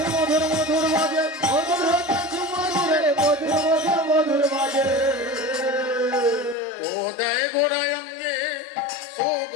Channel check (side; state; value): right; drops out; at 6.6 s